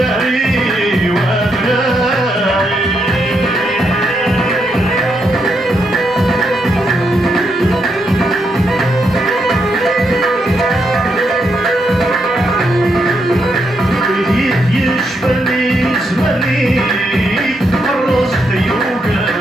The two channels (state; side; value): normal; both; correlation 0.80